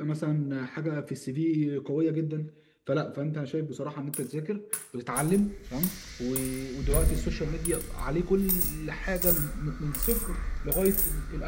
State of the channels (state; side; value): identical; both; correlation 1.00